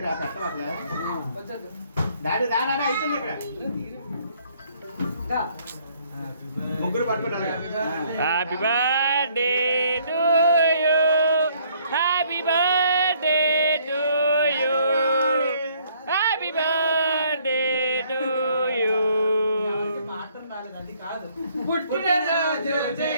పెట్టవట్లే daddy daddy అయిపోయింది ఇక్కడ ముగ్గురు పట్టుకుంటారు. Happy birthday to you, happy birthday to you, happy birthday to you. పుట్టినరోజు జై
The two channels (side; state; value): both; inverted; correlation -0.64